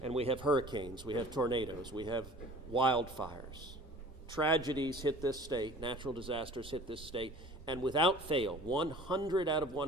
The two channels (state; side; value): normal; both; correlation 0.46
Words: and we have hurricanes, we have tornadoes, we have wildfires. Tragedies hit this state, natural disasters hit this state, and without fail, 100 out of